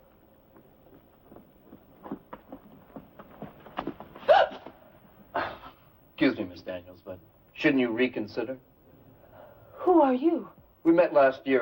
Excuse me, Miss Daniels, but shouldn't you reconsider? Who are you? We met last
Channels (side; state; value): both; identical; correlation 1.00